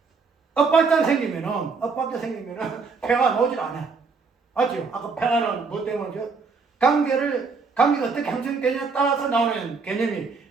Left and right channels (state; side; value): quieter; left; 4.7 dB